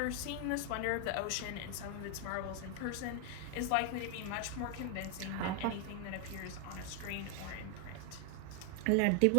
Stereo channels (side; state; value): both; different; correlation 0.00